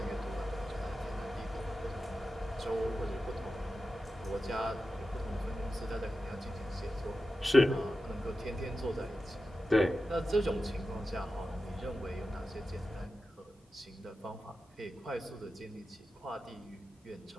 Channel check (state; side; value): normal; both; correlation 0.92